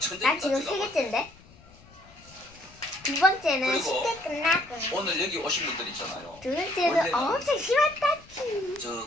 지금 세 개째인데? 두 번째는 그리고 쉽게 끝나고 오늘 여기 오신 분들 있잖아요. 두 번째는 원래는 엄청 심했다.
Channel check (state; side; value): noise; left; rumble, 24 dB below the sound